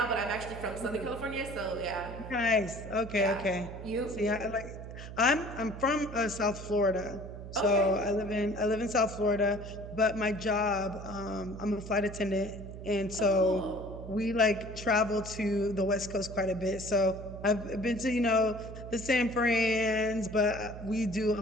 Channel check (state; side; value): noise; right; hum, 11 dB below the sound